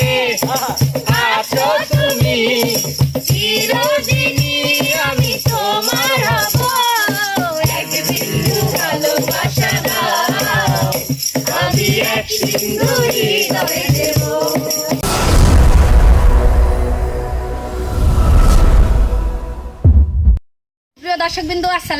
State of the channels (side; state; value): both; identical; correlation 1.00